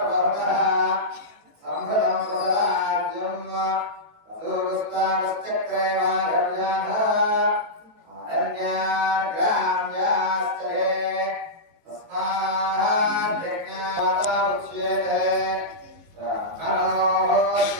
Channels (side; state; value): left; late; 18 ms